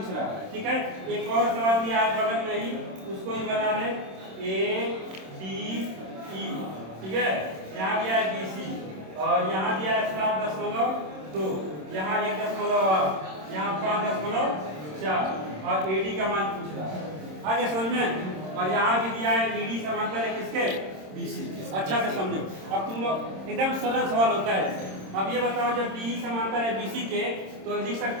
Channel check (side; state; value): left; late; 26 ms